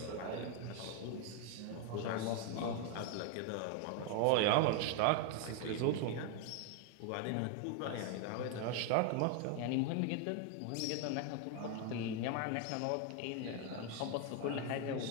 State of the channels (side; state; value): both; different; correlation 0.01